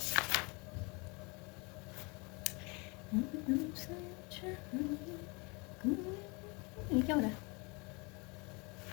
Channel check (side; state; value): right; quieter; 29.3 dB